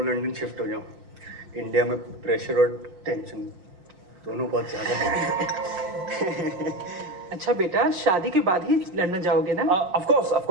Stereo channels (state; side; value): late; left; 6.1 ms